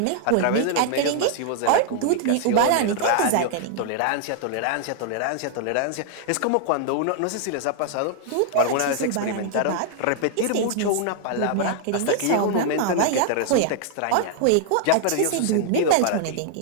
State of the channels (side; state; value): both; different; correlation -0.01